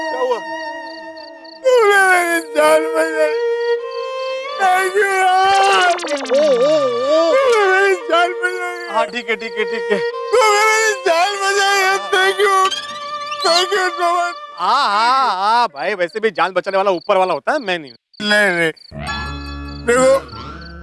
क्या हुआ? तूने मेरी जान बचाई. Thank you यार. तूने मेरी जान बचाई. हाँ ठीक है ठीक है ठीक है. तूने मेरी जान बचाई है. Thank you. Thank you so much. हाँ भाई, वैसे भी जान बचाने वाला ऊपर वाला होता है, मैं नहीं. नहीं देखो,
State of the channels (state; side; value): identical; both; correlation 1.00